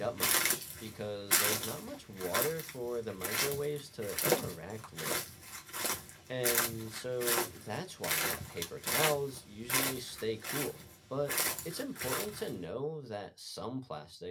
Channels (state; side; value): identical; both; correlation 1.00